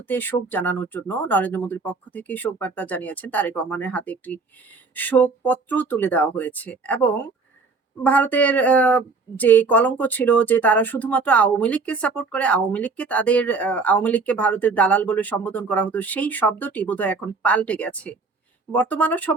শোক জানানোর জন্য। নরেন্দ্র মোদীর পক্ষ থেকে শোক বার্তা জানিয়েছেন। তারেক রহমানের হাতে একটি শোকপত্র তুলে দেওয়া হয়েছে এবং ভারতের যে কলঙ্ক ছিল যে তারা শুধুমাত্র আওয়ামী লীগকে সাপোর্ট করে, আওয়ামী লীগকে ভারতের দালাল বলে সম্বোধন করা হতো। সেই শব্দটি বোধহয় এখন পাল্টে গেছে। বর্তমান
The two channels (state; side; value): quieter; left; 4.3 dB